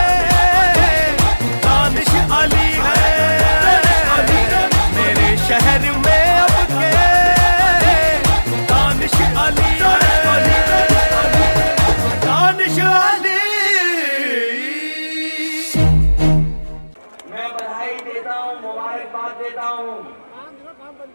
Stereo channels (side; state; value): both; inverted; correlation -1.00